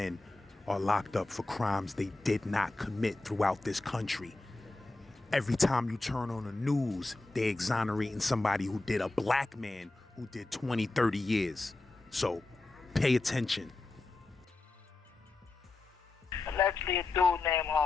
are locked up for crimes they did not commit throughout this country. Every time you turn on the news, they're exonerating somebody who did, a black man who did 20, 30 years. So pay attention. Allegedly, a dude named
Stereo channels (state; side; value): quieter; right; 3.2 dB